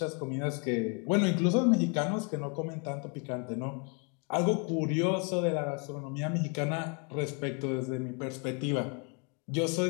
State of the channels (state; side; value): quieter; right; 35.2 dB